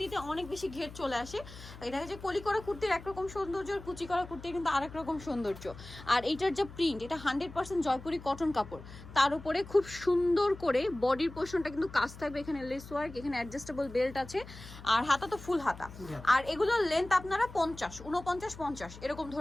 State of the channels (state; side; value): noise; left; hum, 16 dB below the sound